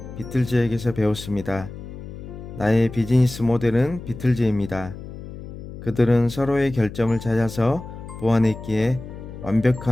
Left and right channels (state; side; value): noise; left; hum, 12 dB below the sound